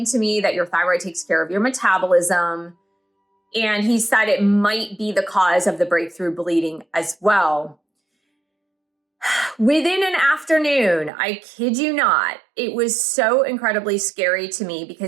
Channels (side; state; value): left; drops out; at 11.1 s